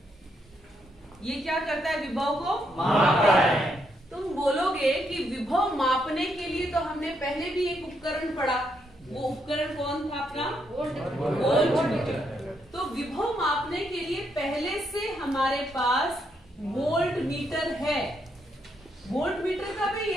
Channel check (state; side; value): normal; both; correlation 0.77